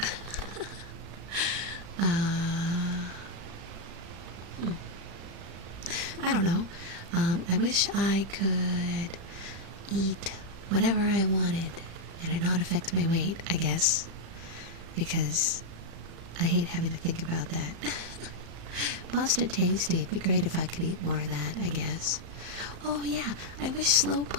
I don't know. I wish I could eat whatever I wanted and it not affect my weight, I guess. Because I hate having to think about that. Pasta tasty. It'd be great if I could eat more of that, I guess. Oh yeah, I wish slow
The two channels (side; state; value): left; late; 35 ms